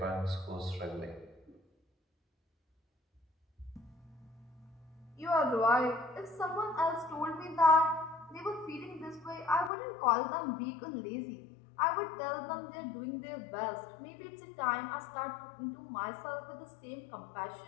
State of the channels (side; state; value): right; drops out; at 9.7 s